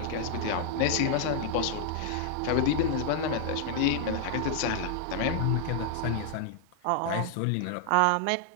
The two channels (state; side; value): different; both; correlation 0.00